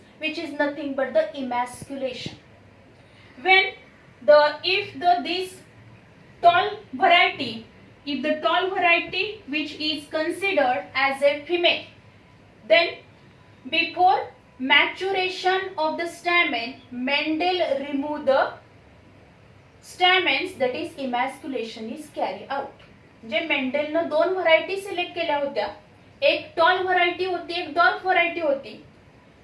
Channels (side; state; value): both; identical; correlation 1.00